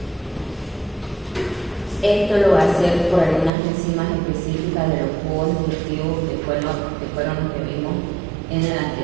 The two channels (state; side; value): drops out; left; at 3.5 s